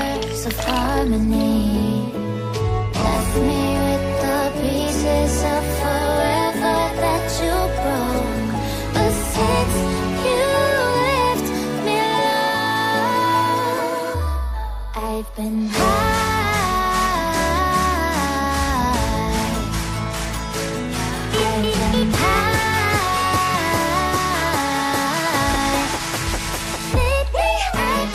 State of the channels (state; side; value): identical; both; correlation 1.00